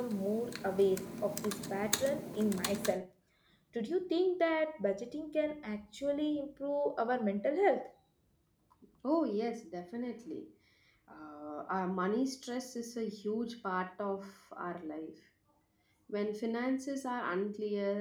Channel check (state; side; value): identical; both; correlation 1.00